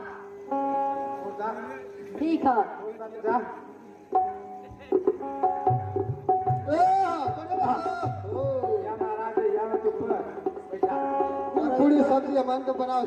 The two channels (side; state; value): both; identical; correlation 1.00